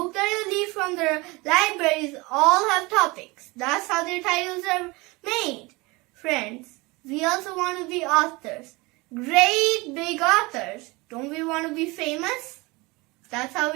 that you read from the libraries all have topics. That's how their titles are made. Friends, we also want to be authors. Great big authors. Don't we want to be famous? That's how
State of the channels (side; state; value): left; quieter; 24.2 dB